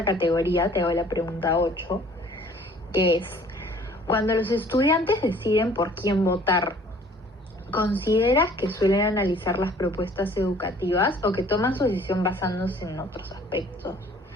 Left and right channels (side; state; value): both; normal; correlation 0.54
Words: categoría, te hago la pregunta 8, que es, cuando los estudiantes deciden por quién votar, ¿consideras que suelen analizar las propuestas educativas o que toman su decisión basándose en otros aspectos?